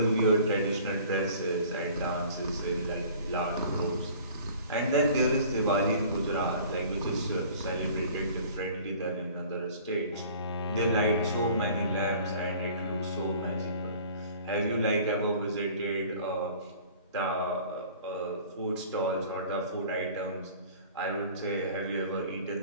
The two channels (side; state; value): both; inverted; correlation -0.48